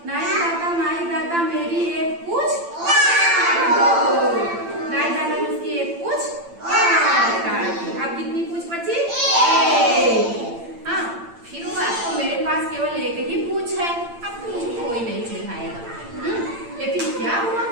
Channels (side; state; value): left; late; 8.8 ms